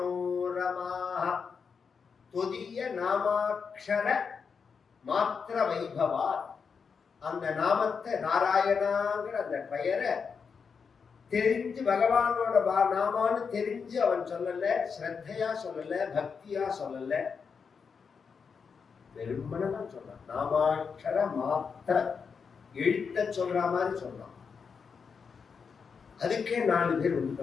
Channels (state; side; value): quieter; right; 5.9 dB